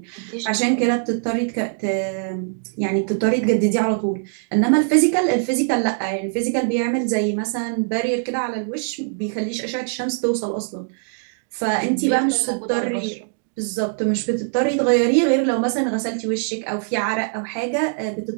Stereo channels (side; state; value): left; silent; digital silence